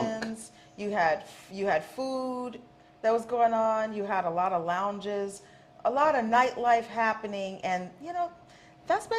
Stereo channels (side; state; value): both; identical; correlation 1.00